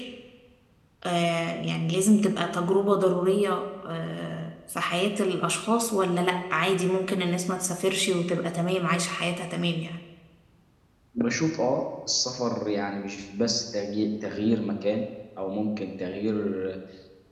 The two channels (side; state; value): both; identical; correlation 1.00